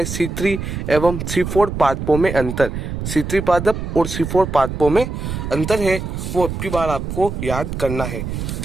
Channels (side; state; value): right; noise; rumble, 5 dB below the sound